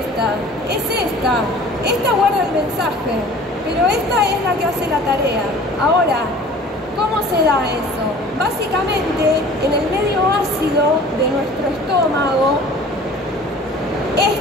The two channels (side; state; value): both; normal; correlation 0.46